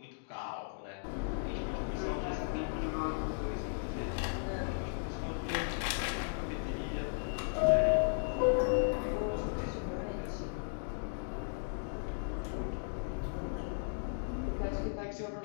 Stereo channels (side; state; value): right; silent; digital silence